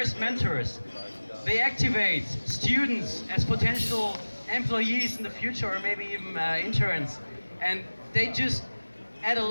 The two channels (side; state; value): both; inverted; correlation -1.00